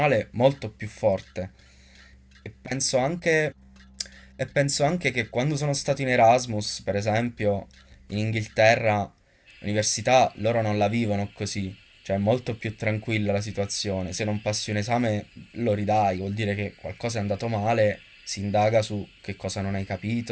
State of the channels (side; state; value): both; identical; correlation 1.00